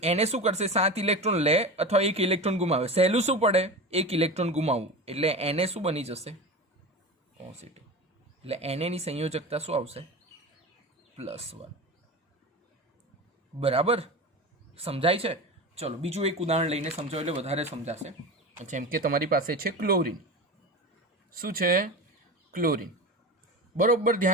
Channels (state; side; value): normal; both; correlation 0.28